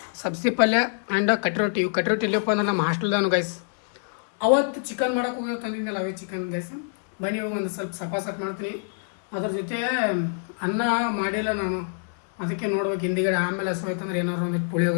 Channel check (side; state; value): right; silent; digital silence